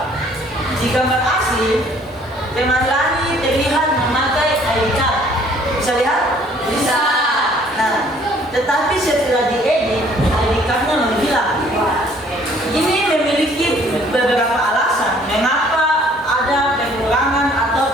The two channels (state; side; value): normal; both; correlation 0.58